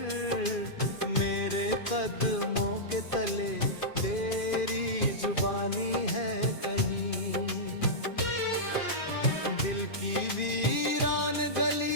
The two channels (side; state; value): right; late; 2.5 ms